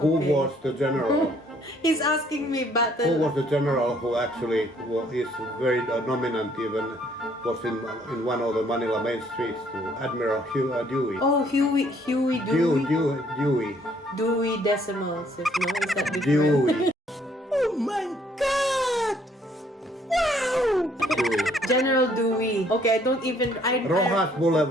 Okay. was the general? He's asking me Who battle. was the general who actually is very dominant, even was in one of the Manila main streets, to Admiral Dewey. Oh, Huey Dewey. Dewey Decimals. If no, is that different? Dewey. General Dewey. Okay, I don't even. Rojas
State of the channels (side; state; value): both; normal; correlation 0.64